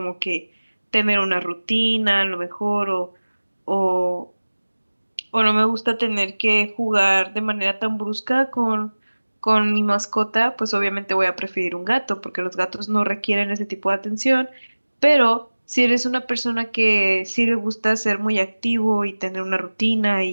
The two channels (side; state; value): both; inverted; correlation -1.00